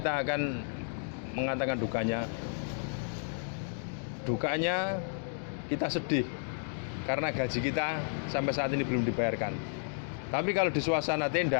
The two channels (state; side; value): silent; right; digital silence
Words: akan mengatakan dukanya. Dukanya kita sedih karena gaji kita sampai saat ini belum dibayarkan. Tapi kalau di suasana